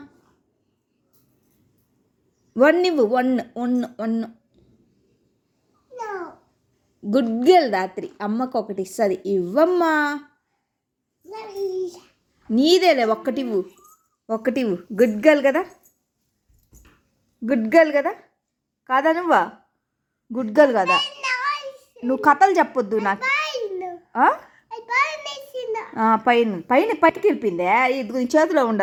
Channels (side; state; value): both; identical; correlation 1.00